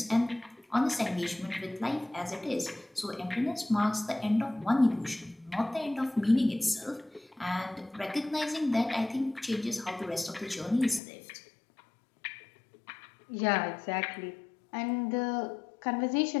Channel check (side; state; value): right; drops out; at 11.0 s